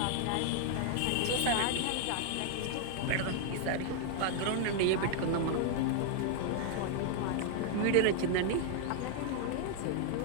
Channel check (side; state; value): both; different; correlation 0.00